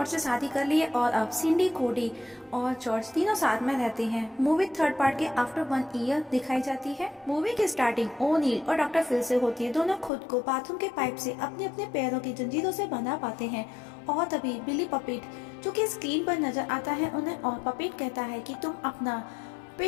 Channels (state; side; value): drops out; right; at 10.1 s